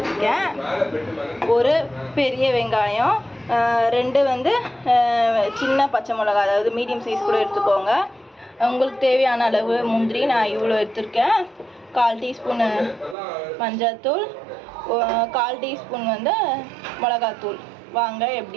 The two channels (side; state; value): left; drops out; at 13.2 s